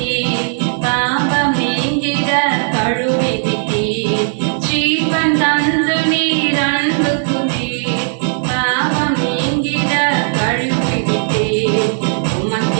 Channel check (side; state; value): left; silent; 57 dB below the other